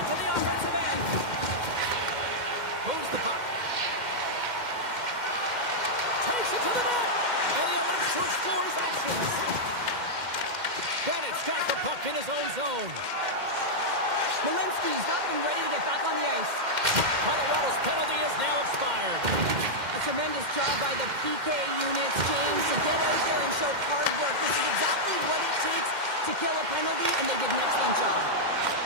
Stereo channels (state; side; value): late; left; 2.1 ms